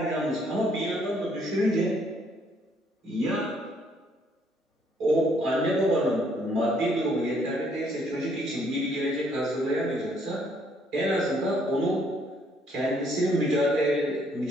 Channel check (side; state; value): both; normal; correlation 0.67